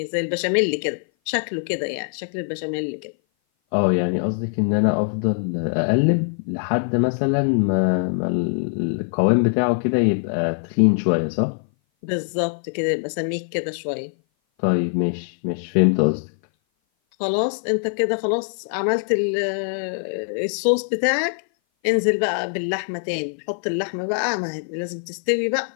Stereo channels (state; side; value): silent; right; 57 dB below the other